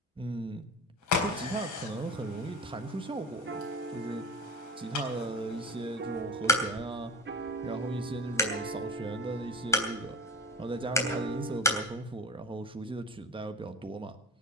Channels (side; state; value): both; normal; correlation 0.32